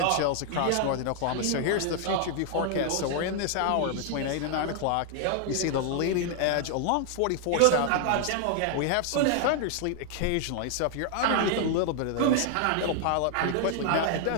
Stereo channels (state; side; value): different; both; correlation 0.00